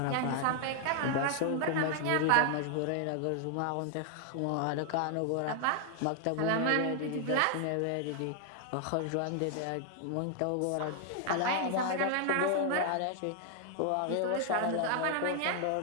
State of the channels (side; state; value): both; different; correlation 0.00